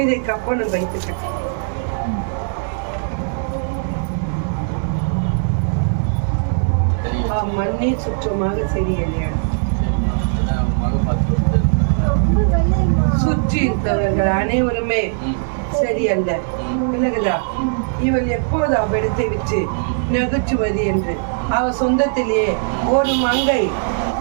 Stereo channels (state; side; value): silent; left; digital silence